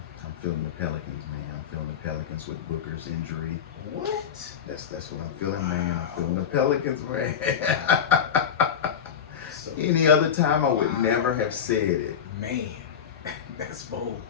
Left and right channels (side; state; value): right; quieter; 8.0 dB